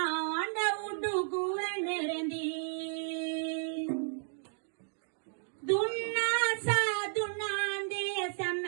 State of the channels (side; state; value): left; silent; digital silence